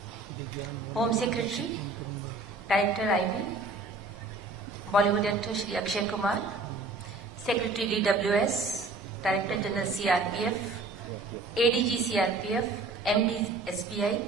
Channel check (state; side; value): quieter; left; 3.5 dB